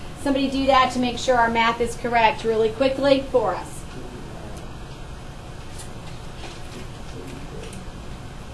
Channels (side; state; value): both; identical; correlation 1.00